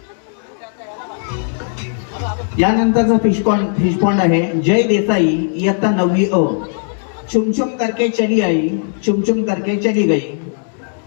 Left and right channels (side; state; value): right; silent; digital silence